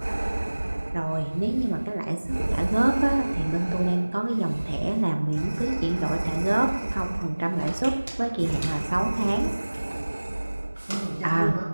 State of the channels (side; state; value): both; inverted; correlation -1.00